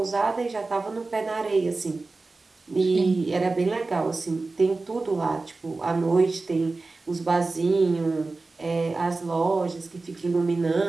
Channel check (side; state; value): left; quieter; 3.6 dB